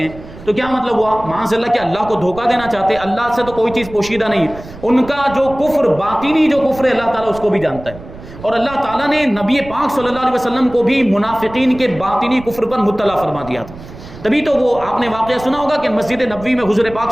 ہیں، تو کیا مطلب ہوا؟ معاذ اللہ کہ اللہ کو دھوکہ دینا چاہتے ہیں، اللہ سے تو کوئی چیز پوشیدہ نہیں، ان کا جو کفر باطنی جو کفر ہے اللہ تعالیٰ اس کو بھی جانتا ہے، اور اللہ تعالیٰ نے نبی پاک صلی اللہ علیہ وسلم کو بھی منافقین کے باطنی کفر پر مطلع فرما دیا تھا۔ تبھی تو وہ آپ نے واقعہ سنا ہوگا کہ مسجد نبوی میں حضور پاک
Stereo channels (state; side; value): noise; right; rumble, 16 dB below the sound